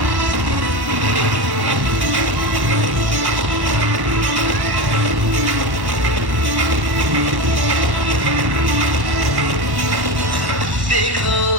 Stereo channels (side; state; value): left; late; 1.1 ms